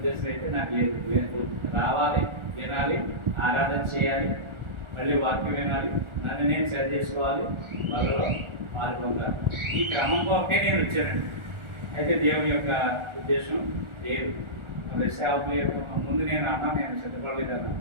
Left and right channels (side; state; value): left; late; 1.4 ms